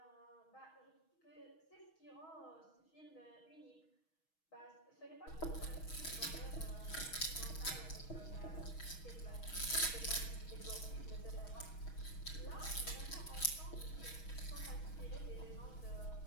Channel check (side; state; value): right; late; 6.3 ms